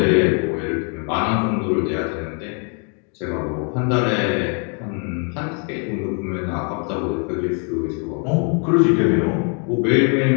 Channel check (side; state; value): right; quieter; 39.8 dB